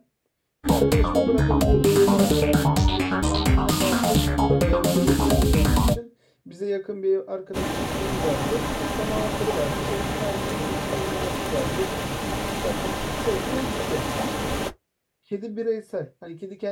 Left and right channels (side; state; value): both; identical; correlation 1.00